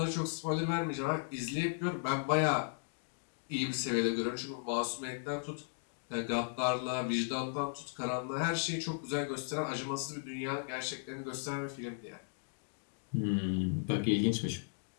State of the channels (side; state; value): right; silent; digital silence